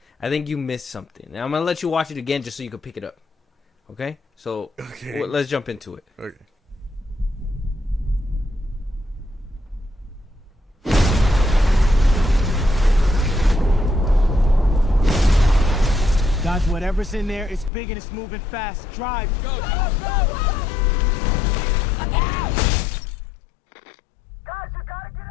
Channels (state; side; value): drops out; right; at 17.7 s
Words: I think you missed something. Now, I'm going to let you watch it again just so you can pick it up. Okay? So, let's jump into it. Okay. Dodge whatever's in there. It's big and it's moving fast. Drive. Go, go, go, go. Look out! Guys, you gotta get